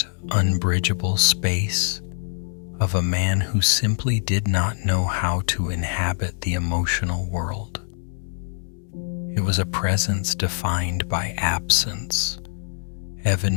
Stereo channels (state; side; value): silent; right; digital silence